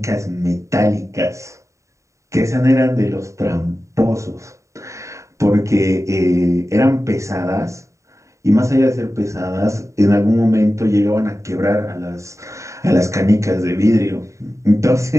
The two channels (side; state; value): left; late; 0.15 ms